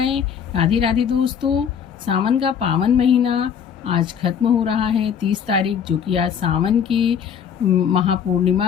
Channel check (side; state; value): right; quieter; 7.8 dB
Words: राधे राधे दोस्तों। सावन का पावन महीना आज खत्म हो रहा है 30 तारीख, जो कि आज सावन की